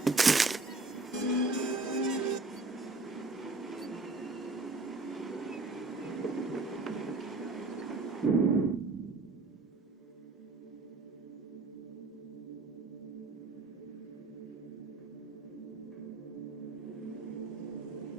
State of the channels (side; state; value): left; quieter; 3.3 dB